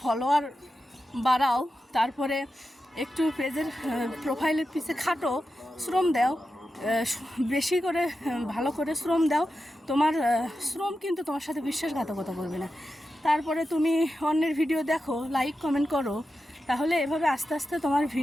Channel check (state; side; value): normal; both; correlation 0.91